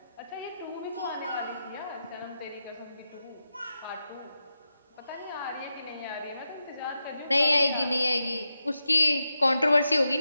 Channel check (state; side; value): inverted; both; correlation -0.88